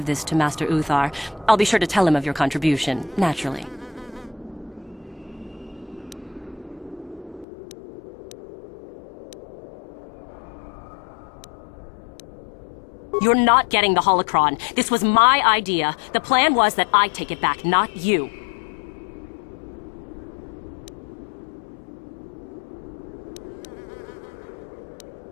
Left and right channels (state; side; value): drops out; right; at 7.5 s